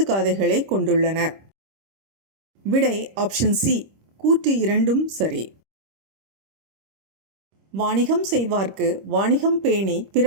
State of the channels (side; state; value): left; late; 26 ms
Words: காதைகளை கொண்டுள்ளன. விடை ஆப்ஷன் சி. கூற்று 2ம் சரி. வாணிகம் செய்வார்க்கு வாணிகம் பேணி